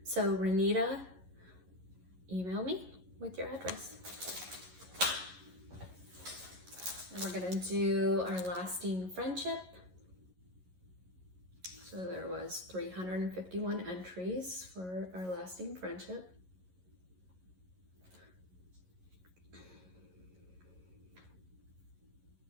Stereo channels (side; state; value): left; late; 11 ms